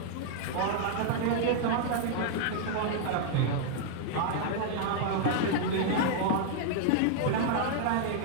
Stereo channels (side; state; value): both; different; correlation -0.01